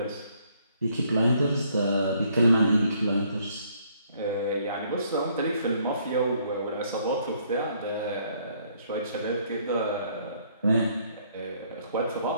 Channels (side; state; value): both; inverted; correlation -0.66